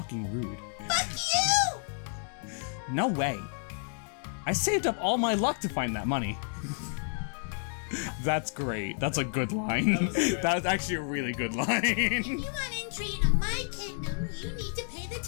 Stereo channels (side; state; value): right; silent; 58 dB below the other